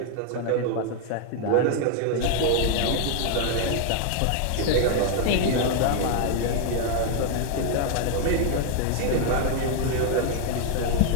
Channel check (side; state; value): both; different; correlation 0.00